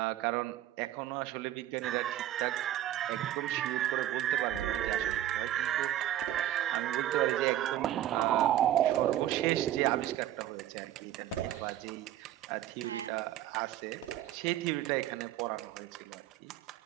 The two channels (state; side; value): quieter; left; 12.9 dB